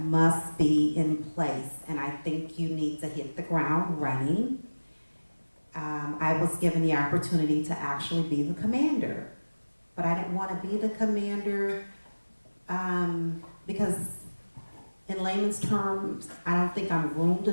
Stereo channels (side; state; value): both; inverted; correlation -1.00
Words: be in place, and I think you need to hit the ground running. I was given the opportunity to actually be the commander, but I didn't want to be the commander because in layman's terms, I don't think I'm groomed